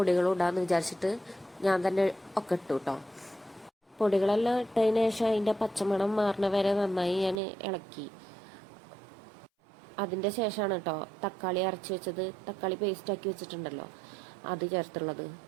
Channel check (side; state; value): left; drops out; at 7.4 s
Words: ഇടാമെന്ന് വിചാരിച്ചിട്ട് ഞാൻ തന്നെ ഒക്കെ ഇട്ടു കേട്ടോ. പൊടികളെല്ലാം ഇട്ടതിന് ശേഷം അതിൻ്റെ പച്ചമണം മാറണ വരെ നന്നായി ഞാൻ ഇളക്കി. അതിൻ്റെ ശേഷമാണ് കേട്ടോ തക്കാളി അരച്ച് വെച്ചത്, തക്കാളി പേസ്റ്റാക്കി വെച്ചിട്ടുണ്ടല്ലോ അത് ചേർത്തുള്ളത്.